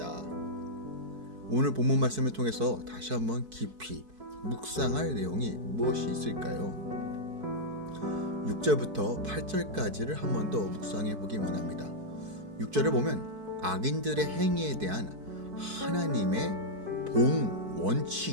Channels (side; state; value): left; late; 4.6 ms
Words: 오늘 본문 말씀을 통해서 다시 한번 깊이 묵상할 내용이 무엇이 있을까요? 6절부터 8절까지를 한 번 더 묵상해 보기 원합니다. 6절을 보면 악인들의 행위에 대한 하나님의 보응